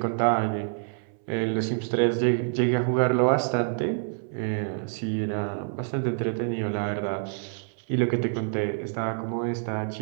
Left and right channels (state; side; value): silent; left; 60 dB below the other